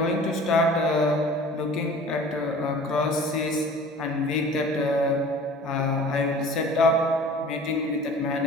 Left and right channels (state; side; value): normal; both; correlation 0.44